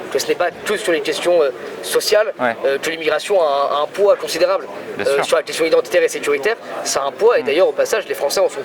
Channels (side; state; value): both; identical; correlation 1.00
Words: que ce n'est pas que sur les questions sociales que l'immigration a un poids considérable. Sur la question identitaire et sécuritaire, ça a un poids, et d'ailleurs, au passage, les Français en sont